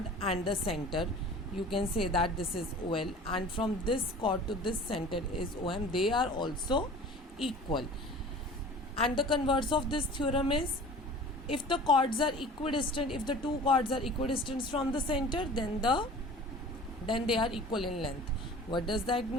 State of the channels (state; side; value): normal; both; correlation 0.42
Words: and the center. You can say that this is OL, and from this chord to this center is OM. They are also equal. And the converse of this theorem is, if the chords are equidistant, if the two chords are equidistant from the center, then they are equal in length. What does that